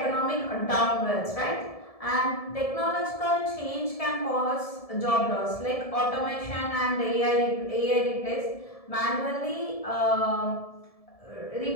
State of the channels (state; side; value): late; right; 1.7 ms